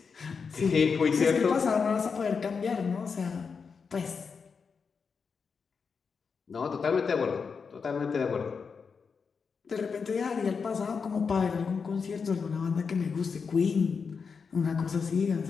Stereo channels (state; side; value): quieter; right; 5.5 dB